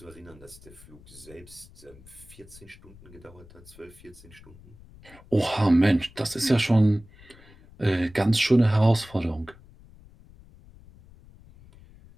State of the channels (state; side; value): noise; left; rumble, 23 dB below the sound